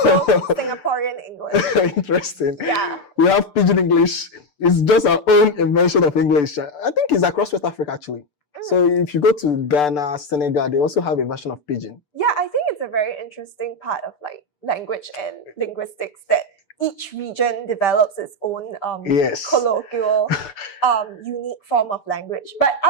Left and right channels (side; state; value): right; late; 6.8 ms